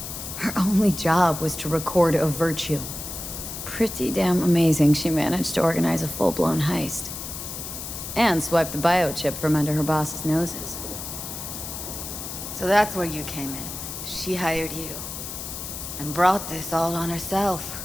Her only job was to record a virtue. Pretty damn amazing she managed to organize a full-blown heist. And swipe the biochip from under her boss's noses. So that's where you came in. She hired you. And brought this all on herself.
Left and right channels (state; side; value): noise; left; hiss, 8 dB below the sound